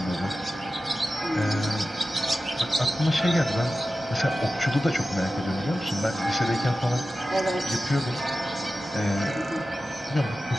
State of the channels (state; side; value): normal; both; correlation 0.94